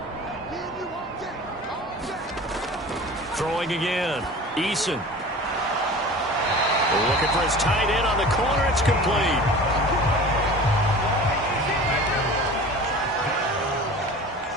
Throwing again. Eason. Looking for his tight end on the corner. It's complete.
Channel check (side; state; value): both; normal; correlation 0.39